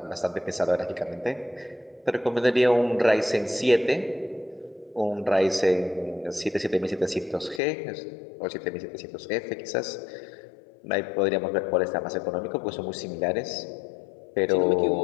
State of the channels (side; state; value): right; drops out; at 7.6 s